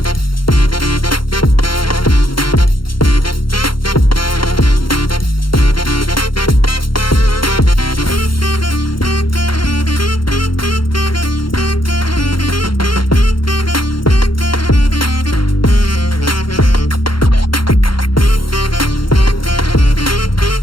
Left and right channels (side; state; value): right; late; 0.73 ms